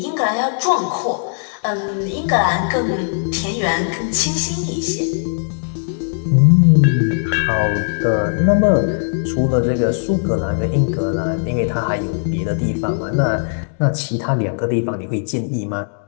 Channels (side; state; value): right; silent; digital silence